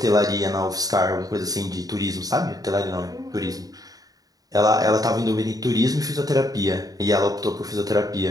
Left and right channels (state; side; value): late; left; 0.18 ms